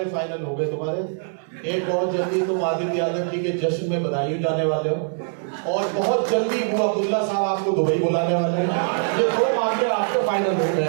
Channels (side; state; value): left; silent; 64 dB below the other